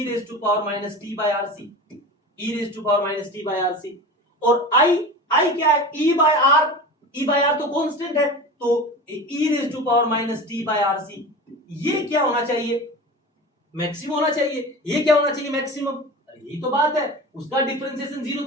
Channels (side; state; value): both; normal; correlation 0.32